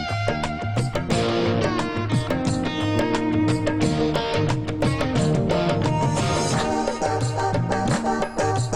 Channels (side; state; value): both; identical; correlation 1.00